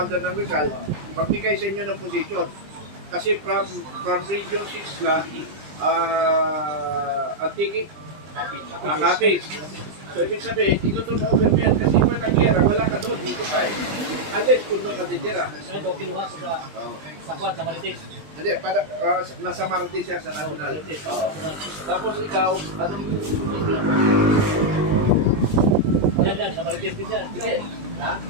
ng Rizal, magbigay sa inyo ng position. Kasi from Region 6 lang, Antique, Kapis. So, ibig sabihin, ito turnover mo yan kasi kung nag-gera, wala ka doon, dito ka eh. Unless kung doon ka titira. Ano, kinuha ko sa Kwan, sa Marites. Hindi, nasa Marites siya sa National. Tapos ikaw, anong Yan, sa Marites din yan. Sige. Ha?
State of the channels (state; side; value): late; left; 20 ms